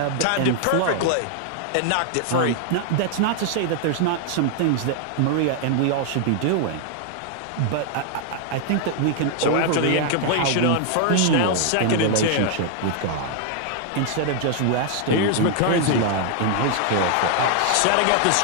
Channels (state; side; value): different; both; correlation 0.00